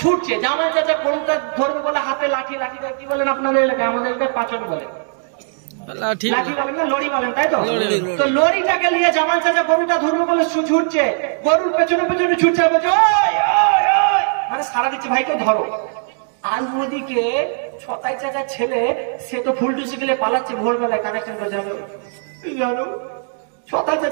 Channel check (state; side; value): silent; left; digital silence